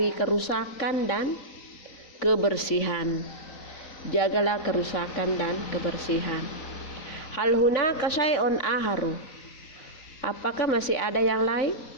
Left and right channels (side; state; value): right; late; 3.9 ms